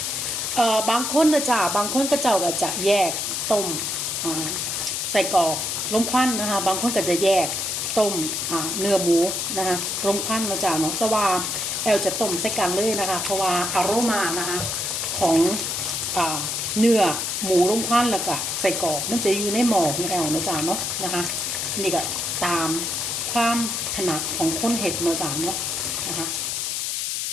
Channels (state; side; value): noise; left; hiss, 1 dB below the sound